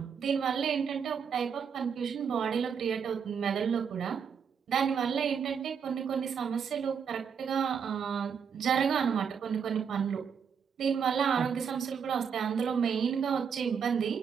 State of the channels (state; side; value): quieter; left; 6.9 dB